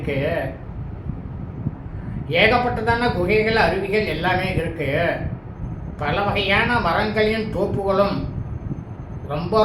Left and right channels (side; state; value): both; identical; correlation 1.00